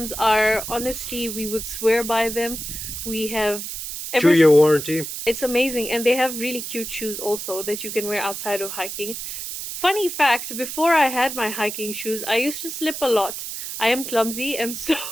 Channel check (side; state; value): right; noise; hiss, 7 dB below the sound